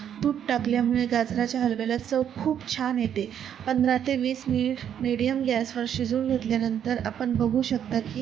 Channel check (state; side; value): quieter; left; 9.3 dB